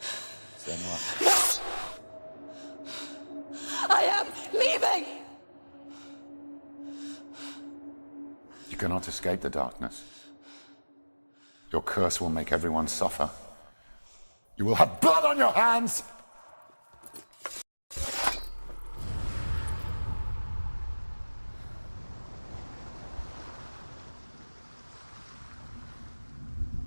I am leaving! You cannot escape the darkness. Your curse will make everyone suffer. You will have blood on your hands!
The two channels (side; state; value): both; inverted; correlation -1.00